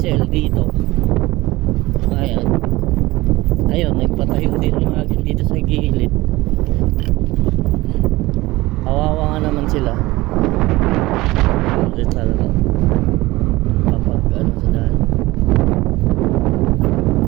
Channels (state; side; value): quieter; left; 19.6 dB